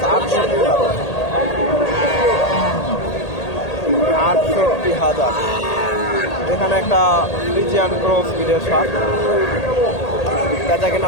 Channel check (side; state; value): right; late; 1.8 ms